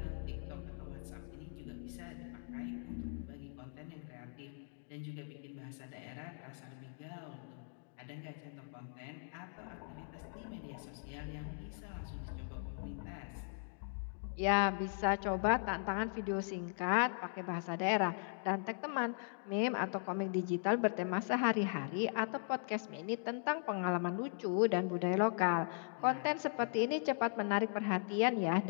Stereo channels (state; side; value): silent; right; digital silence